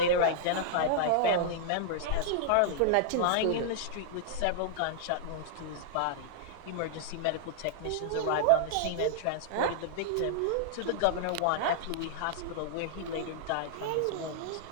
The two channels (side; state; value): both; different; correlation -0.01